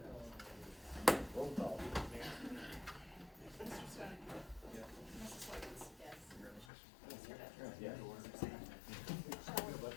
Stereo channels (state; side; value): drops out; right; at 6.7 s